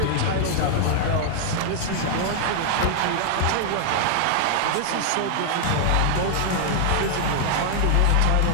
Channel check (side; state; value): both; different; correlation 0.00